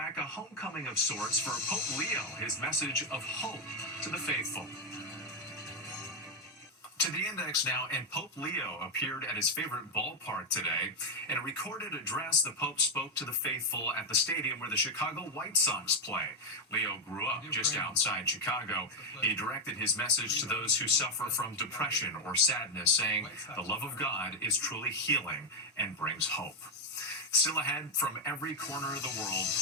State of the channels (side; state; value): both; normal; correlation 0.04